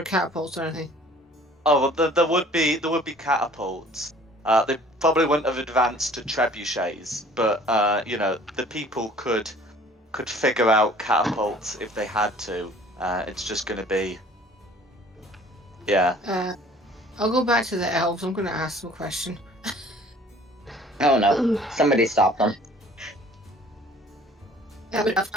catapults or anything. Oh, well, there would be catapults. They probably wouldn't have advanced to trebuchets, but the people could figure out catapults if they had to. It's just going to be, yeah. I'll go back to the elves. I'm going to ask them a question. Oh no, somebody stop them. I'm an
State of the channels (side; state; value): both; normal; correlation 0.52